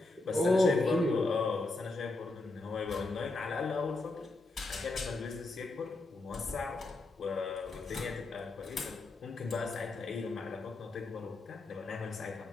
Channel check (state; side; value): quieter; right; 3.1 dB